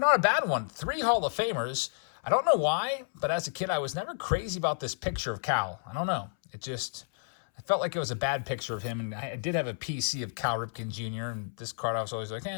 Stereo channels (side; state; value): right; silent; 57 dB below the other